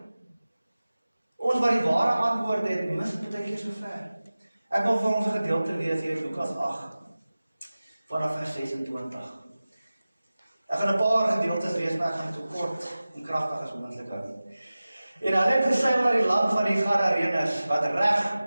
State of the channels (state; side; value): inverted; both; correlation -0.97